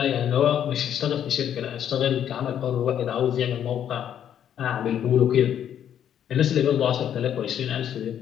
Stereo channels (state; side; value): quieter; right; 9.7 dB